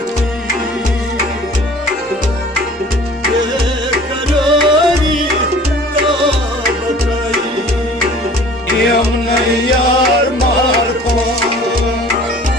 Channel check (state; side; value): normal; both; correlation 0.48